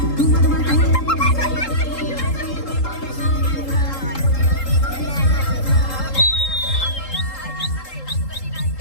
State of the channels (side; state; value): right; late; 3.8 ms